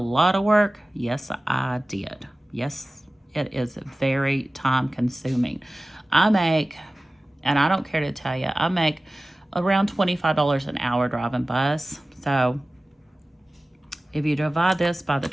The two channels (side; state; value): both; normal; correlation 0.97